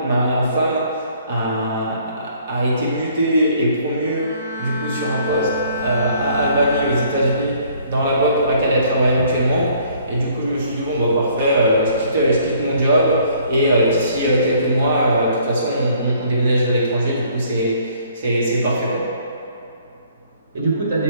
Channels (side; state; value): both; inverted; correlation -0.61